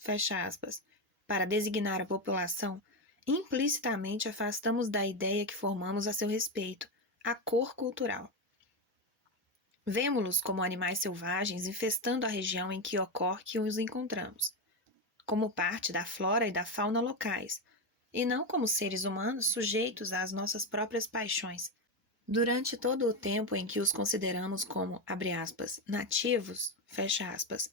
aspas, para designar a população, implicitamente afastamos da ideia que formamos a seu respeito, a cor cultural. Vemo-los como animais selvagens infestando a região em que ocorre que os encontramos, como parte da flora e da fauna locais, e não como seres humanos sujeitos às nossas próprias paixões. Durante todo o tempo em que os consideramos como, abre aspas, nativos, fecha aspas,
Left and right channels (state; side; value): normal; both; correlation 0.11